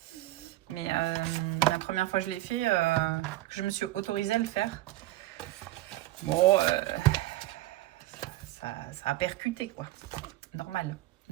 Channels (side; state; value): left; quieter; 16.8 dB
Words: Mais la première fois que je l'ai fait, je me suis autorisée à le faire. Bon, ça a percuté quoi. Normal.